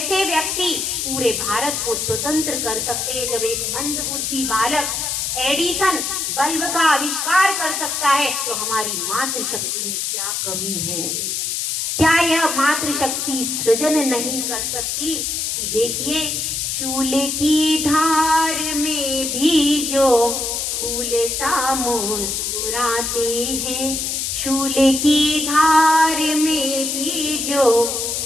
व्यक्ति पूरे भारत को स्वतंत्र कर सकते हैं, जब एक मंदबुद्धि बालक एडिसन बल्ब का आविष्कार कर सकता है, तो हमारी मातृशक्ति में क्या कमी है? क्या यह मातृशक्ति सृजन नहीं कर सकती? कि देखिए, शूल की धार में भी जो फूल सा मुस्कुराते हैं, शूल की धार में भी जो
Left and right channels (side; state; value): left; noise; hiss, 1 dB below the sound